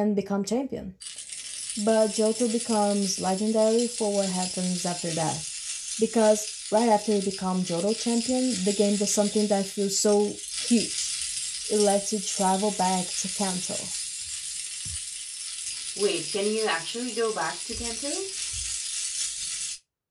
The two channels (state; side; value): identical; both; correlation 1.00